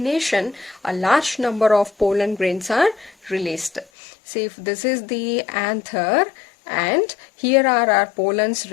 a large number of pollen grains are released. See, if this is the anther and here are our pollens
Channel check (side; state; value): right; drops out; at 3.9 s